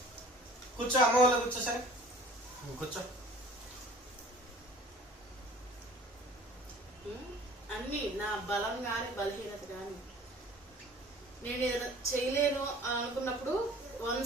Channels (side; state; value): both; normal; correlation 0.48